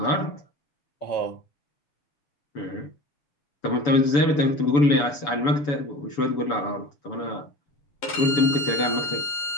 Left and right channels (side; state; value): right; late; 7.0 ms